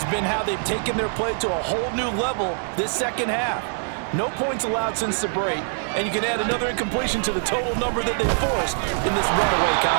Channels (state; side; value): silent; left; 62 dB below the other